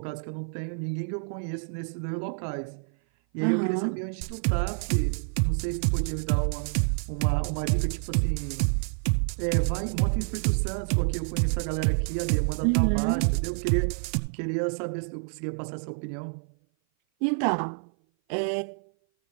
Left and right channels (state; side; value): silent; left; 56 dB below the other